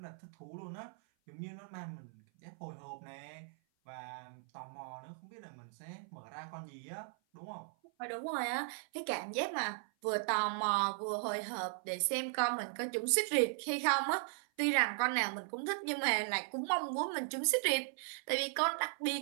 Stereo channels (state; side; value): silent; left; 53 dB below the other